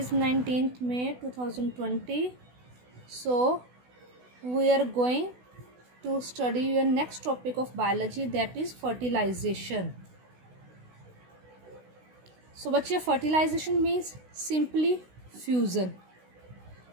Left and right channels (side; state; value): left; late; 16 ms